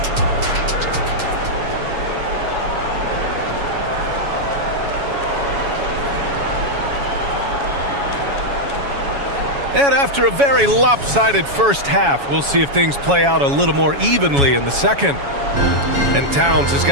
And after a very lopsided first half, we'll see if things play out a little more evenly in the second. And Towns has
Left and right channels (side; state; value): left; late; 7.2 ms